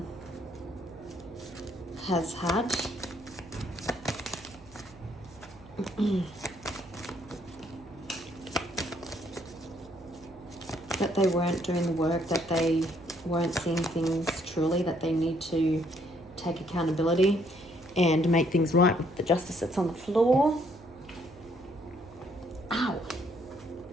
has had? That they weren't doing the work, that they weren't seeing things truly, that they need to take accountability and make things right with the Justice that's on the floor. Ow!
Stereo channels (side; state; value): right; noise; hum, 22 dB below the sound